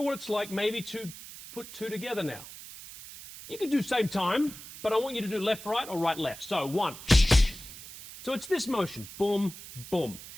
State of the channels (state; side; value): noise; right; hiss, 14 dB below the sound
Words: what it's like maybe to put two together now. You can do same time, but I want you to do left, right, or right, left. So one. So it's this motion, boom, boom.